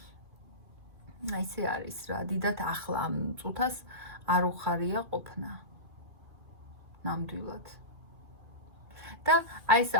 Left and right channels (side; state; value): left; late; 2.5 ms